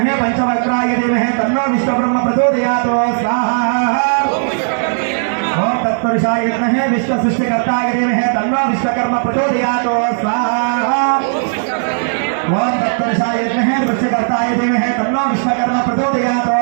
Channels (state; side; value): silent; left; digital silence